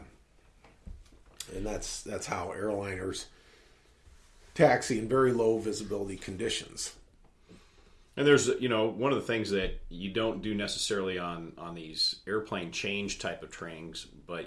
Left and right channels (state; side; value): identical; both; correlation 1.00